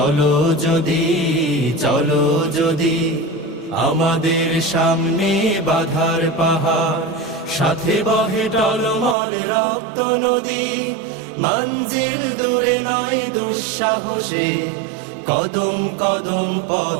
যদি, চলো যদি। আমাদের সামনে বাধার পাহাড়, সাথে বহে টলমল রক্ত নদী। মঞ্জিল দূরে নয় দুঃসাহসে, কদম কদম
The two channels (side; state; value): left; drops out; at 9.2 s